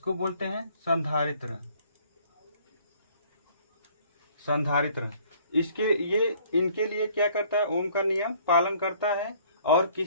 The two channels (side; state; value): both; inverted; correlation -0.58